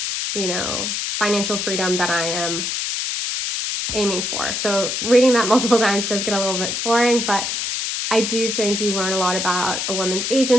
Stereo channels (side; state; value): left; noise; hiss, 2 dB below the sound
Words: financial freedom that I am aiming for. So reading that multiple times does get a little bit boring, but I do think you learn a lot about a woman's